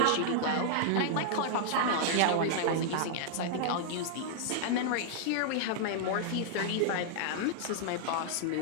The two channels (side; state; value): both; different; correlation -0.01